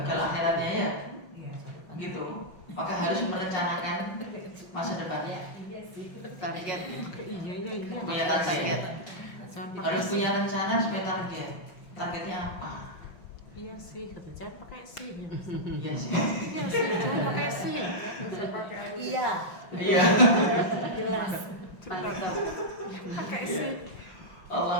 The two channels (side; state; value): right; late; 5.8 ms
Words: akhiratnya ya, gitu. Maka harus merencanakan masa depannya. Target. Iya. Punya target. Harus punya rencana supaya target. Targetnya apa? Iya sih, kata jangan pakai sih. Iya sih. Iya sih, jangan pakai sih. Iya. Iya. Jelas. Pakai sih.